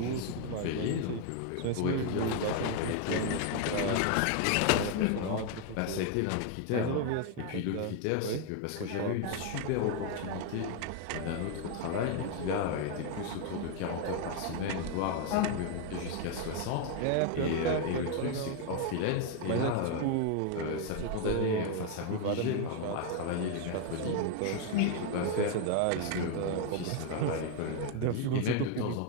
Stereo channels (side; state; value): both; different; correlation 0.01